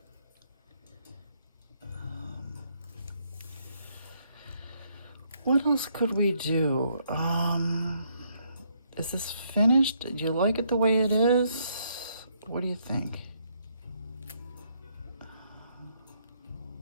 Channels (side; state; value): both; inverted; correlation -0.72